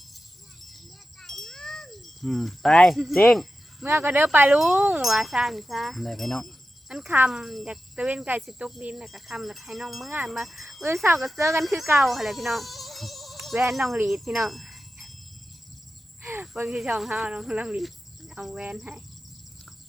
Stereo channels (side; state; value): both; normal; correlation 0.92